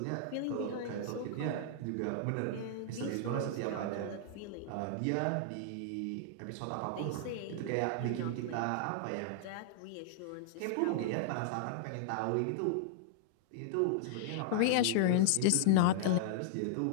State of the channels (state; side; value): different; both; correlation -0.01